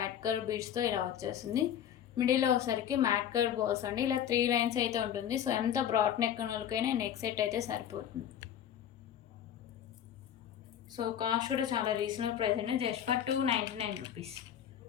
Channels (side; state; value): right; quieter; 9.8 dB